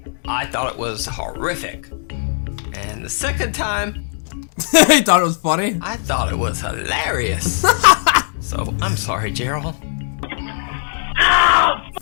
I thought it was horrific. And the second time, He thought it was funny? I thought it was hilarious. So, I'm sorry, Gerald.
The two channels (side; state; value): right; silent; digital silence